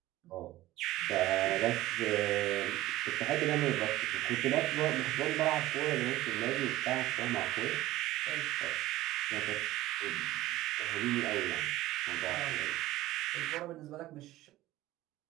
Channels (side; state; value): left; quieter; 16.3 dB